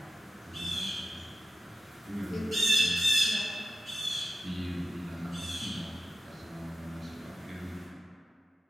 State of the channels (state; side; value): normal; both; correlation 0.94